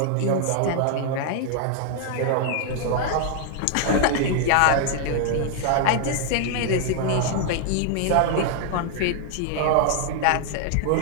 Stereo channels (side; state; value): both; different; correlation 0.00